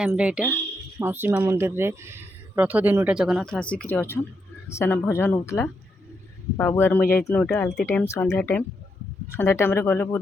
रे इटा मौसी माँ मंदिर रे रथ दिन इटा जगन्नाथ आसिक अच्छन सेना भजन होतला। बाबू आर मुझे जाइतनु इटा आलती टाइम संध्या टाइम रे गले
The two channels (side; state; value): both; normal; correlation 0.81